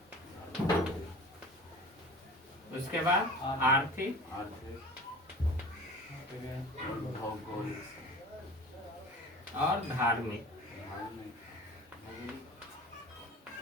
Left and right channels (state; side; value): normal; both; correlation 0.40